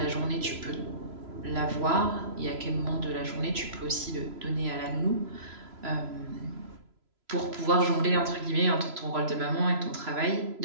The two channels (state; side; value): late; left; 3.0 ms